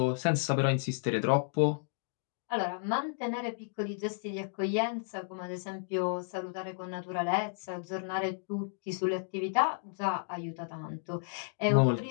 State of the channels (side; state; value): right; silent; digital silence